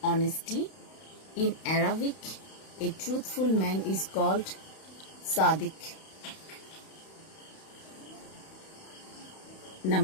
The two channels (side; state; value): right; late; 31 ms